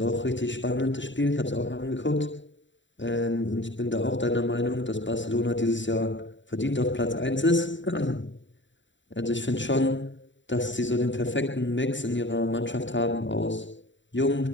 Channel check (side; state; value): right; late; 0.54 ms